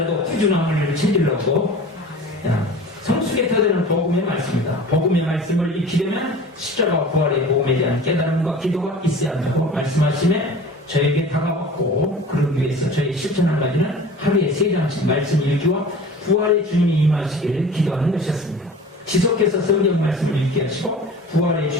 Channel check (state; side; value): normal; both; correlation 0.40